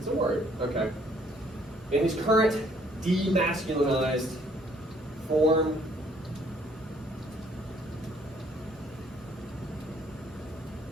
a word. Okay. In his current demasculinized form,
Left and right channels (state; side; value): normal; both; correlation 0.63